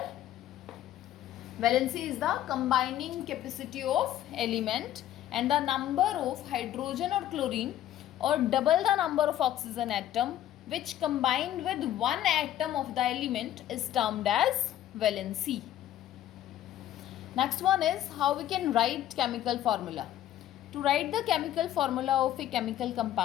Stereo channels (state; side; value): quieter; right; 12.3 dB